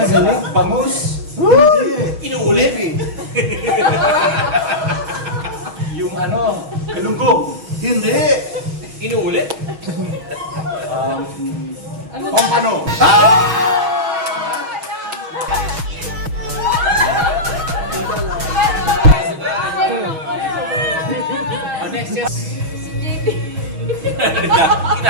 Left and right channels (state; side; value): late; left; 6.3 ms